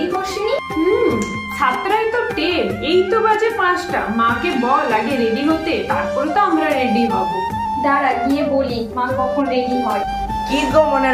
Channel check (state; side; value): identical; both; correlation 1.00